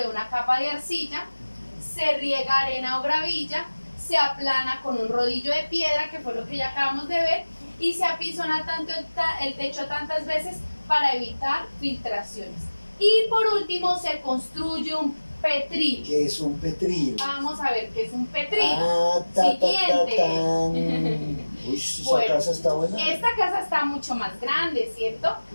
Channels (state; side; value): inverted; both; correlation -1.00